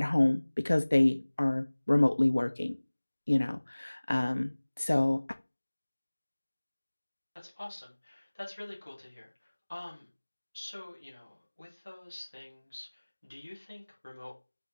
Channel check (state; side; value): inverted; both; correlation -1.00